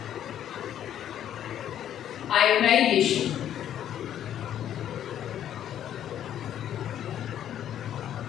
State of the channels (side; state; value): right; quieter; 10.6 dB